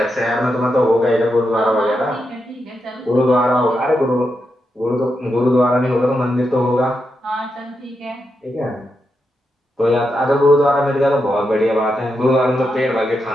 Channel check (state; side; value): normal; both; correlation 0.85